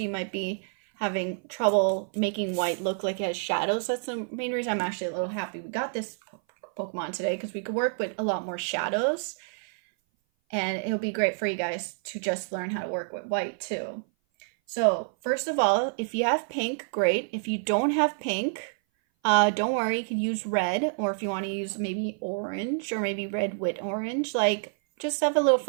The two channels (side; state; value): left; silent; 57 dB below the other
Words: might be having trouble making white look like it has shadows. That's the main reason I'm actually a little happy we got this Pokemon today, because we could work with a lot more shadows, and it'll be great for you guys to just learn how to work with white too. So first of all, if you have pink, great. If you don't have pink, don't worry, you can use red, or if you want to use maybe orange or maybe red with orange, like just have a little